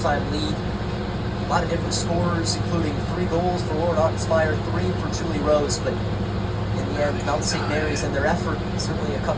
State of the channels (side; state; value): both; identical; correlation 1.00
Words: lead. A lot of different scores, including 3 goals for Lauren Ottenspire, 3 for Julie Rose, but in the end, Mount St. Mary's and their effort, certainly a